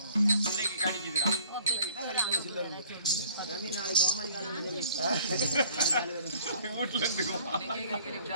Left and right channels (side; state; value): both; inverted; correlation -0.54